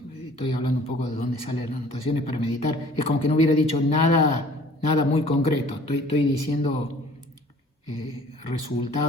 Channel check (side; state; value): both; normal; correlation 0.52